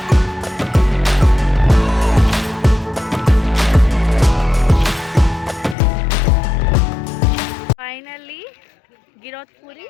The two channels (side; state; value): right; drops out; at 5.8 s